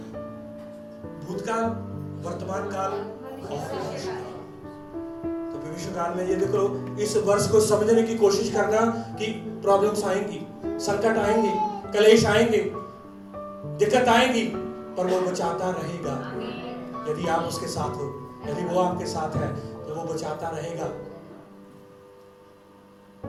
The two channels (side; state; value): both; identical; correlation 1.00